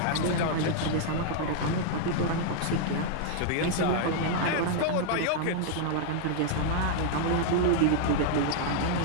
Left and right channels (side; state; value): both; different; correlation -0.01